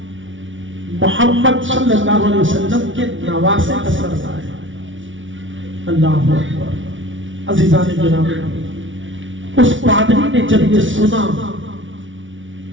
मोहम्मद सल्लल्लाहु अलैहि वसल्लम के नवासे का सर लाए। अल्लाह अकबर। अज़ीज़ान गिरामी, उस पादरी ने जब ये सुना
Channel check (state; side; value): late; left; 0.56 ms